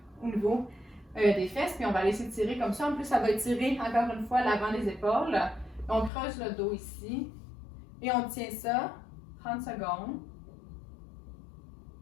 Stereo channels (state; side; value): drops out; right; at 6.1 s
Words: au niveau des fesses, puis on va aller s'étirer comme ça. En plus, ça va étirer encore une fois l'avant des épaules. On creuse le dos ici et on tient ça 30 secondes.